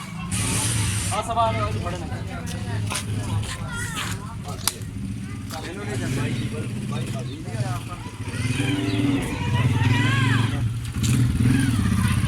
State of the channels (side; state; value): both; identical; correlation 1.00